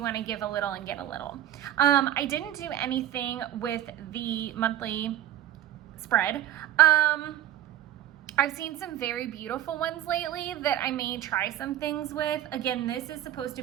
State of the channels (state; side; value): quieter; left; 12.4 dB